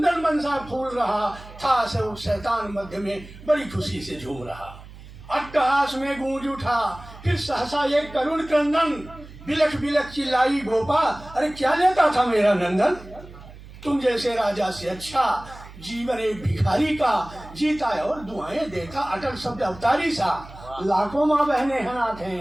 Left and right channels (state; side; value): noise; right; hum, 17 dB below the sound